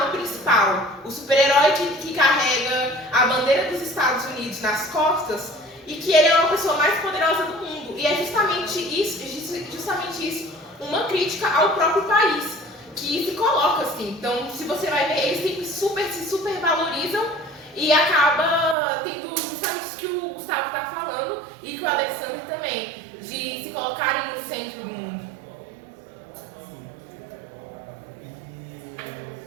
principal. O super-herói que carrega a bandeira dos Estados Unidos nas costas e que ele é uma pessoa mais poderosa do mundo. E é justamente isso, uma crítica ao próprio país, que se coloca assim. Então, se você vai ver, eles sempre se super valorizam e acaba tendo justamente isso que o Gustavo está falando e que o Alexander também, de se colocarem no centro do mundo.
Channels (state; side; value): drops out; left; at 18.8 s